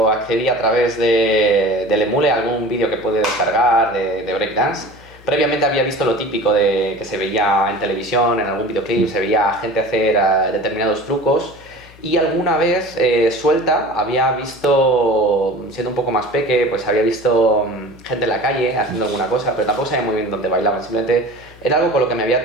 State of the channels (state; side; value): noise; left; hum, 23 dB below the sound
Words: accedí a través del Emule a algún vídeo que pude descargar de breakdance. Previamente había visto lo típico de que se veía en televisión, en algún videoclip, se veía gente hacer determinados trucos. Y alguna vez suelta había visto, siendo un poco más peque, pues había visto gente en la calle haciendo alguna cosa, pero tampoco sabía muy bien dónde bailaban, simplemente era algo con lo que me había